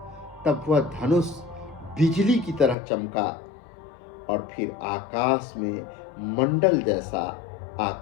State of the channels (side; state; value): right; drops out; at 2.8 s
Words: तब वह धनुष बिजली की तरह चमका और फिर आकाश में मंडल जैसा